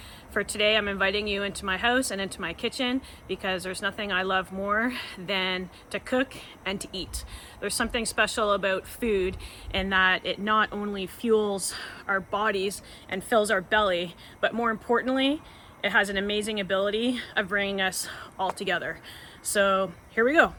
For today, I'm inviting you into my house and into my kitchen because there's nothing I love more than to cook and to eat. There's something special about food in that it not only fuels our bodies and fills our belly, but more importantly, it has an amazing ability of bringing us all together. So here we go.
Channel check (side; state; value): both; identical; correlation 1.00